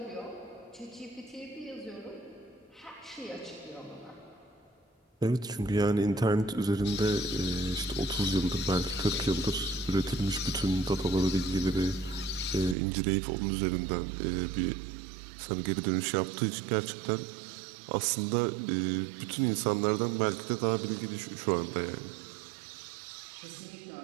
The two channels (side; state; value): left; drops out; at 12.8 s